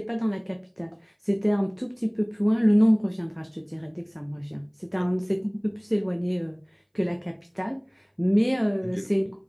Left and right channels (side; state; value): both; identical; correlation 1.00